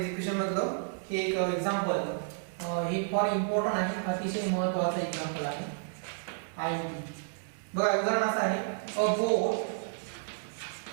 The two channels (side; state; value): left; silent; digital silence